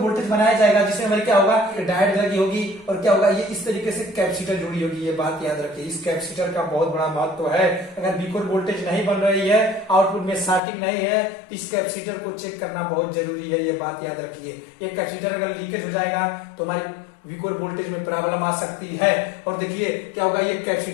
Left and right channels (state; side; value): drops out; right; at 10.6 s